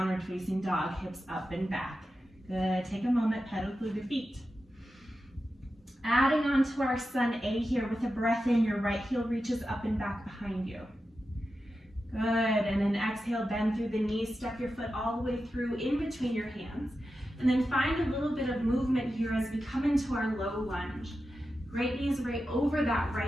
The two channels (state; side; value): normal; both; correlation 0.91